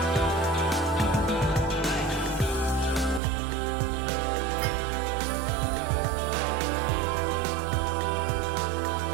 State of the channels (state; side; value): drops out; left; at 3.2 s